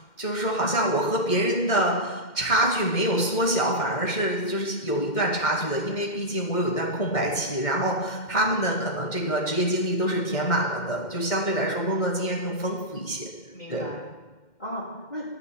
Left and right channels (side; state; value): right; late; 2.1 ms